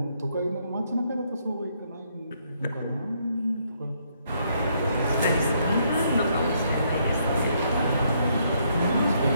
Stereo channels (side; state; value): both; inverted; correlation -0.72